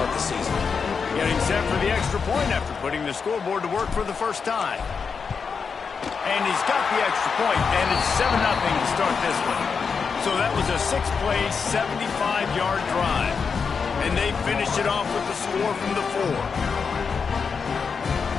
the season. Getting set for the extra point after putting the scoreboard to work for the first time. And he's got the extra point, and it's 7-0 to start this one. So that was a 6-play, 75-yard drive. And they finished it off with the score from the 4.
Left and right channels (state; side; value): quieter; right; 5.7 dB